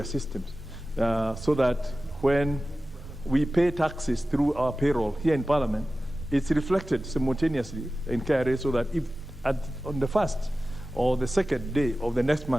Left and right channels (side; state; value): both; normal; correlation 0.95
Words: systems so that when we pay taxes through our payroll here in Parliament, it's reflected simultaneously in KRA so that if on the first or the second day of the next